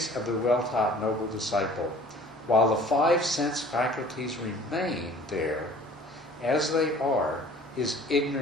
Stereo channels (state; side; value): normal; both; correlation 0.50